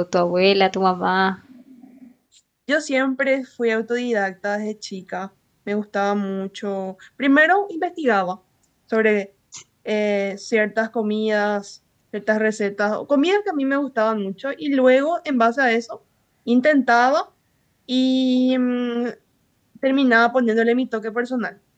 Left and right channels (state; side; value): identical; both; correlation 1.00